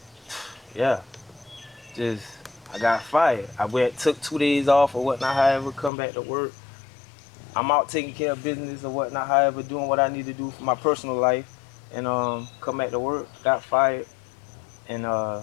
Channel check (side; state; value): right; drops out; at 5.9 s